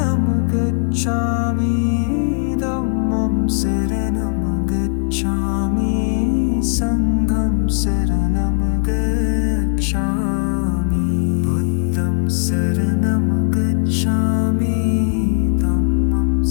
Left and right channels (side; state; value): right; silent; digital silence